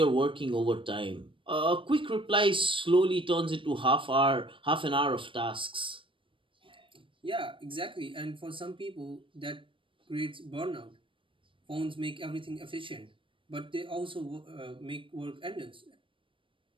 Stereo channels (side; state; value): left; late; 0.25 ms